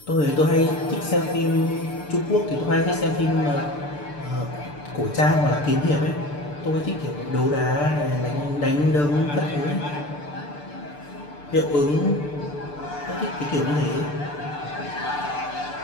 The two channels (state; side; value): late; right; 6.8 ms